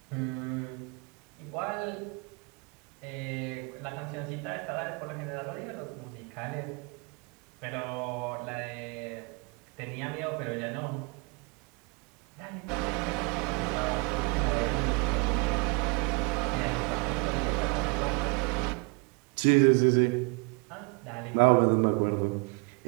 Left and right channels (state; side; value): quieter; left; 31.8 dB